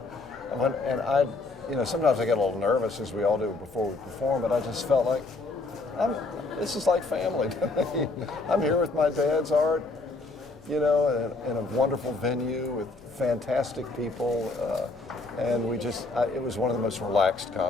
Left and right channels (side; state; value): right; quieter; 3.3 dB